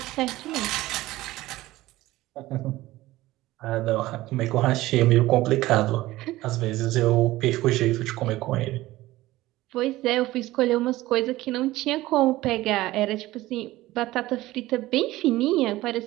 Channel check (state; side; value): quieter; left; 17.3 dB